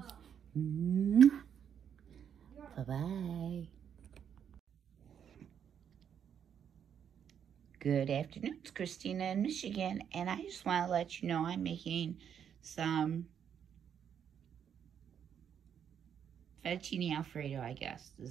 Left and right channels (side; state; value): left; quieter; 8.4 dB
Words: Bye-bye. Good afternoon. It's Christina in Michigan, and I just want to let you know I'm making some fettuccine alfredo, I guess